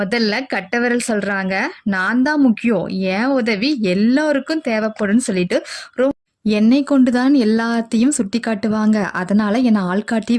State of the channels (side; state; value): both; identical; correlation 1.00